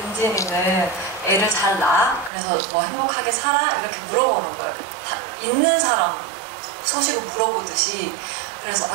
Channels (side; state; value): left; drops out; at 2.3 s